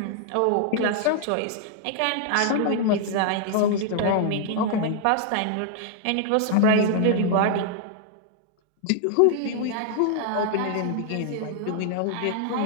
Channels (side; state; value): both; different; correlation 0.00